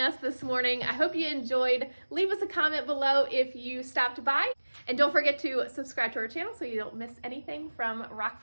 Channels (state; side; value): inverted; both; correlation -1.00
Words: this morning. I hope you enjoyed. Leave us a comment below if you stopped by. And don't forget to subscribe to our channel so you don't miss anything from